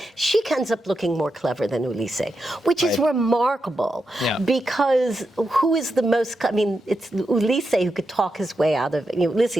she ends up looking more clever than Ulysses, which is remarkable, because who is the most, I mean, it's Ulysses who could talk his way out of,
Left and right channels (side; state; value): both; normal; correlation 0.87